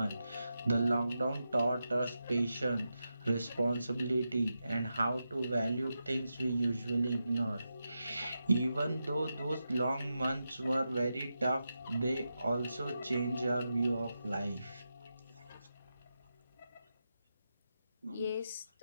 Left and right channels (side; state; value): both; inverted; correlation -0.89